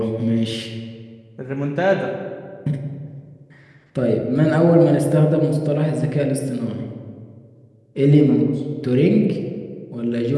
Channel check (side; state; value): both; identical; correlation 1.00